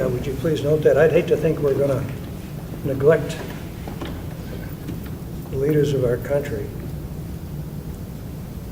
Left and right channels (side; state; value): both; identical; correlation 1.00